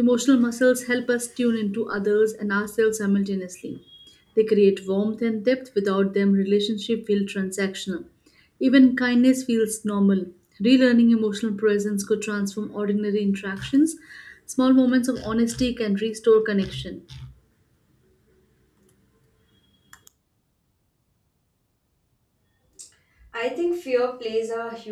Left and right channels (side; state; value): both; identical; correlation 1.00